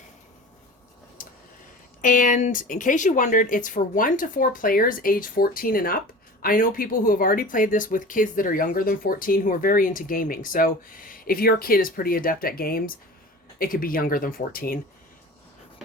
And in case you wondered, it's for 1 to 4 players age 14 and up. I know people who have already played this with kids that are younger than 14 who are very into gaming. So if your kid is pretty adept at games, it could be younger than 14.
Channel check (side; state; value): both; normal; correlation 0.37